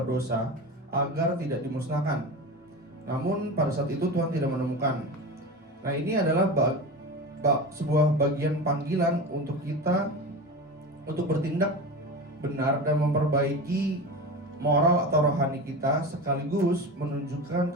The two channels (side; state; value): both; normal; correlation 0.27